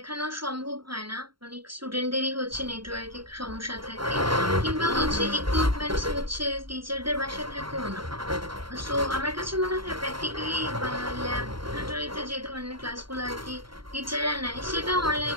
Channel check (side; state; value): left; late; 0.73 ms